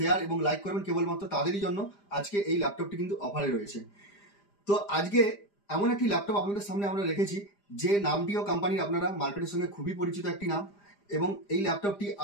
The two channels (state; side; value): late; right; 5.0 ms